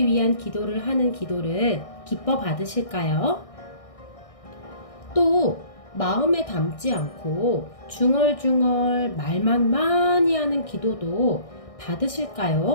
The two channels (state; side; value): late; right; 1.6 ms